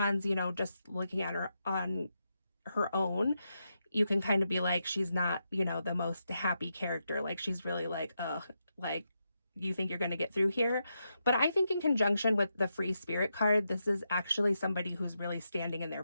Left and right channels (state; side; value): inverted; both; correlation -0.85